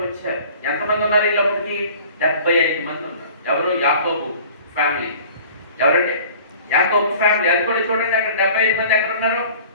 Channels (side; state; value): both; inverted; correlation -0.47